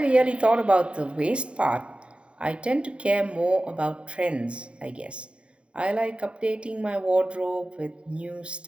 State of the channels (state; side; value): late; left; 0.057 ms